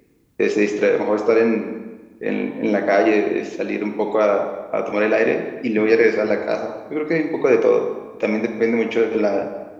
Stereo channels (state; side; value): identical; both; correlation 1.00